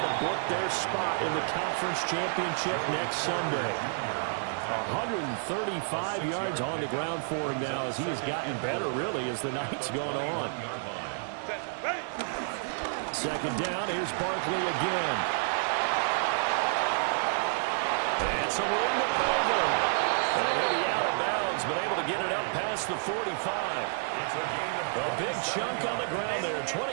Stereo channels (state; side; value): silent; left; digital silence